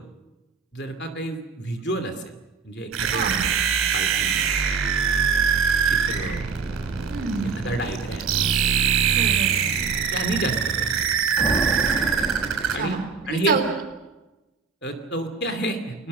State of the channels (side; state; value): left; quieter; 5.4 dB